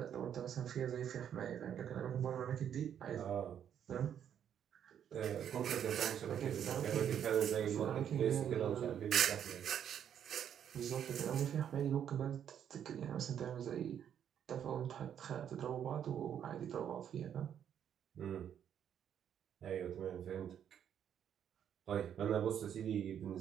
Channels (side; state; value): left; quieter; 9.2 dB